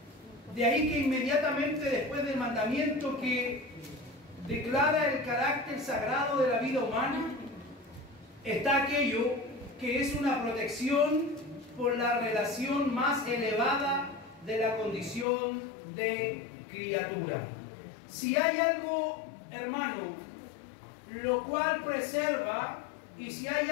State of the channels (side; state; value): right; drops out; at 15.2 s